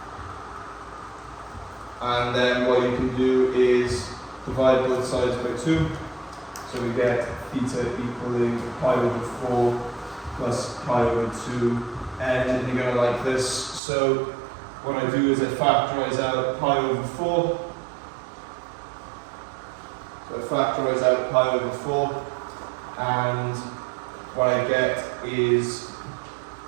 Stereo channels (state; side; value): drops out; left; at 13.8 s